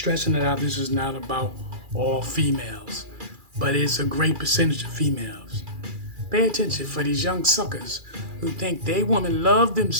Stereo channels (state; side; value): late; left; 2.4 ms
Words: it out. This is not about all females, but it's a great percentage of females. Pay attention for these young suckers who think they women love them